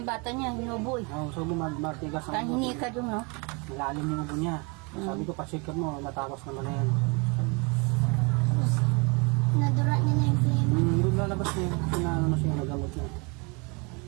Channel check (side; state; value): left; quieter; 30.7 dB